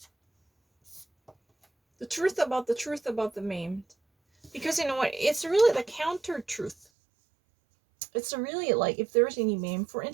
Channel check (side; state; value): left; drops out; at 6.9 s